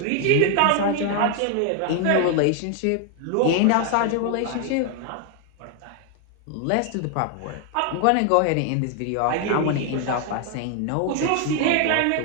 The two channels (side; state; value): both; different; correlation 0.00